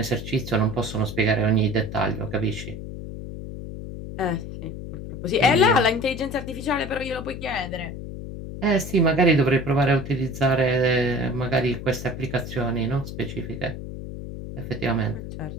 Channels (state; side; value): noise; left; hum, 9 dB below the sound